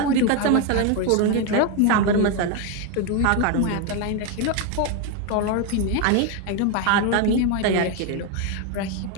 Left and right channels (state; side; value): different; both; correlation 0.01